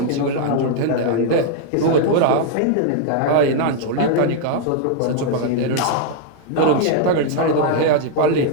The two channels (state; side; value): different; both; correlation 0.00